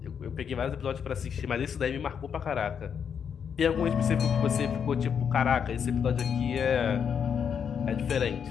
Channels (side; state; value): right; quieter; 7.4 dB